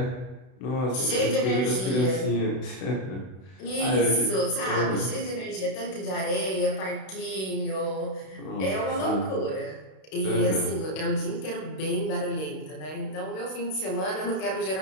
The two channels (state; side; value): late; right; 32 ms